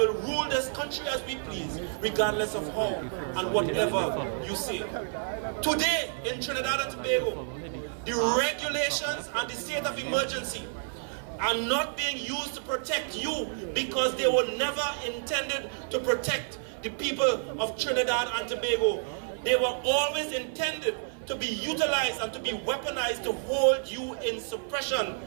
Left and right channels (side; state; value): left; silent; 58 dB below the other